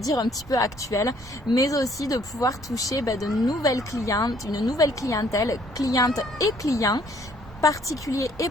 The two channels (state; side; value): normal; both; correlation 0.62